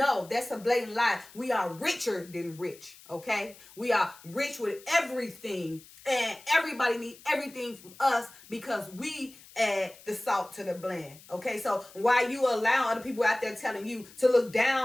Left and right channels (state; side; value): noise; left; hiss, 22 dB below the sound